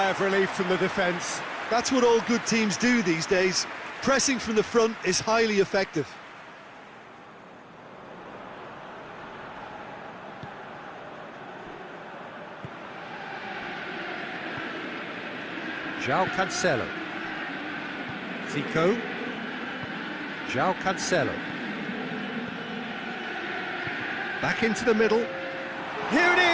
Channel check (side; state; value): both; identical; correlation 1.00